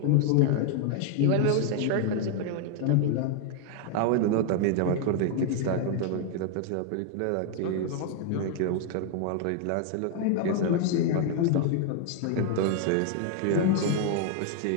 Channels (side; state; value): both; different; correlation 0.00